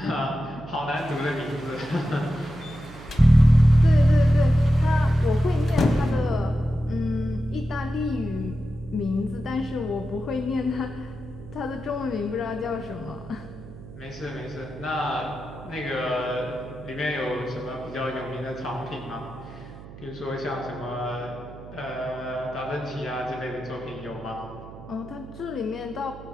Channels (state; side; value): noise; right; hum, 16 dB below the sound